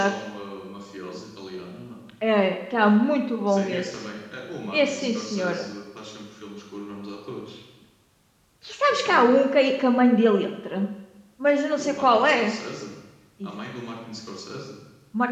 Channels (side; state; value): both; identical; correlation 1.00